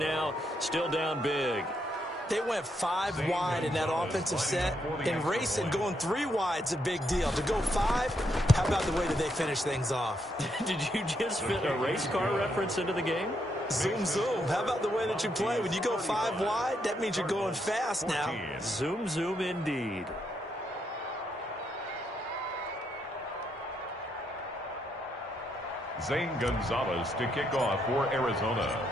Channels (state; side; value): normal; both; correlation 0.78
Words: Still down big. They went 5 wide in that offensive set. In racing, going 3 wide's a big deal. To go 5, how about the way that they finish things off? Did you just fit a race car reference into the game? Zoom, zoom. How about the way that you play? When you go 5 wide, that means you're going fast now. Zoom, zoom indeed. Zane Gonzalez to kick off for Arizona.